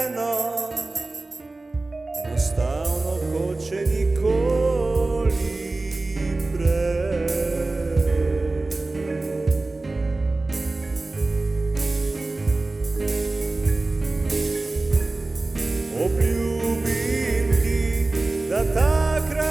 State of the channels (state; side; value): quieter; left; 3.2 dB